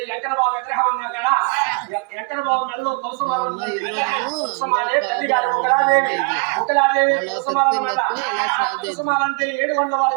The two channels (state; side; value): quieter; left; 34.2 dB